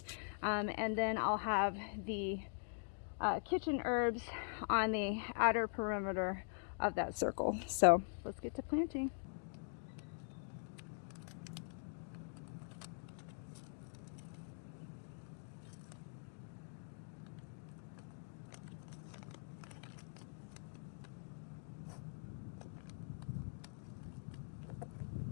and then I'll have the kitchen herbs on the outer perimeter of that circle. So let's get to planting.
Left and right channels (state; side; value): silent; right; digital silence